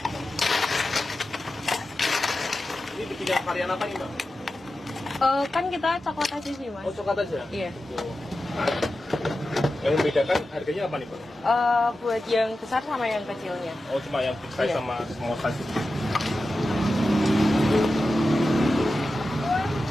Ini bikin varian apa nih Mbak? Kan kita coklat aja sih Mas. Oh coklat aja? Iya. Yang membedakan harganya apa nih Mbak? Buat yang besar sama yang kecilnya. Oh cuma yang big size Iya. sama small size.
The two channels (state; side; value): normal; both; correlation 0.92